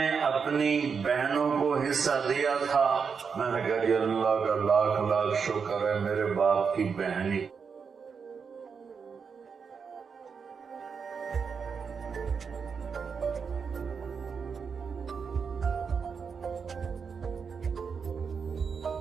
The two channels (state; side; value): quieter; left; 5.9 dB